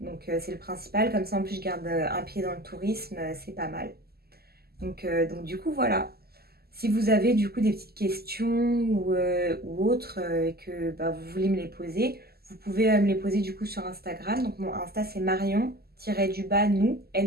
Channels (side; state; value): left; late; 0.46 ms